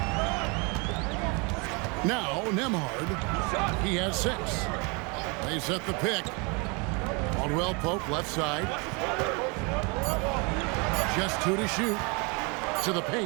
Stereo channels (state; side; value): quieter; left; 31.0 dB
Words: Now, Nembhard. He has 6. They set the pick. Caldwell Pope, left side. Just 2 to shoot. To the